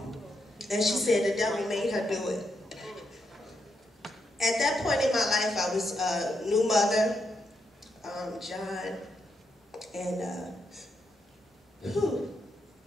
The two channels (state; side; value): normal; both; correlation 0.81